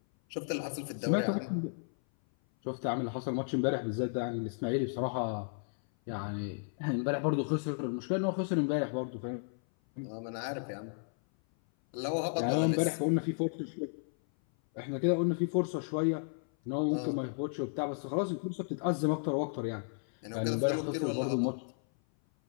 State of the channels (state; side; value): silent; right; 55 dB below the other